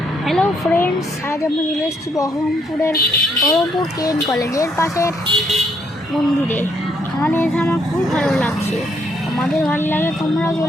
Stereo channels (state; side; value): normal; both; correlation 0.72